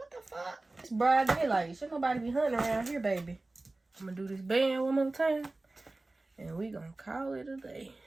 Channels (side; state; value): left; quieter; 3.0 dB